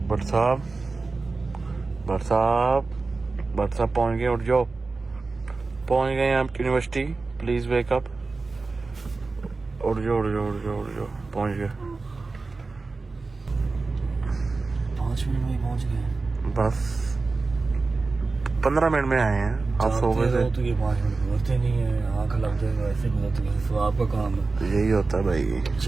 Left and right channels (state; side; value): quieter; left; 3.8 dB